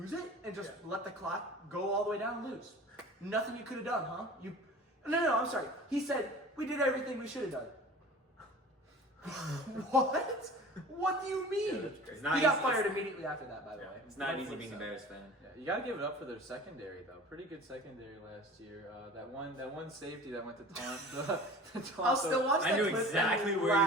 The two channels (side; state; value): both; normal; correlation 0.41